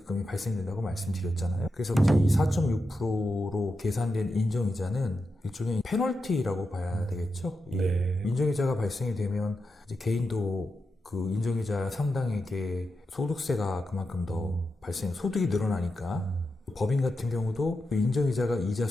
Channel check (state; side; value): normal; both; correlation 0.88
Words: 발생된다고 말씀드렸잖아요. 그래서 이제 이 4.6%로 계산된 인정이자는 일종의 페널티라고 봐야 되겠죠. 네. 인정이자가 발생이 되면 이제 개인도 그 인정이자 상당에게 소득세가 그만큼 더 소득이 늘어나니까 법인 같은 경우도 그 인정이자가 이자